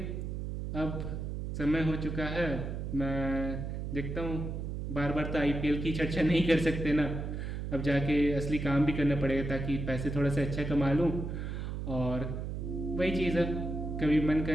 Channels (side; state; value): right; noise; hum, 4 dB below the sound